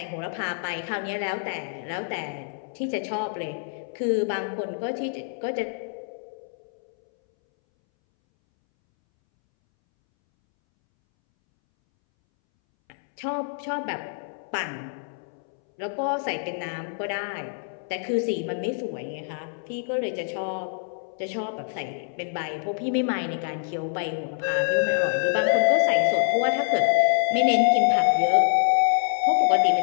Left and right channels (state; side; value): silent; right; 61 dB below the other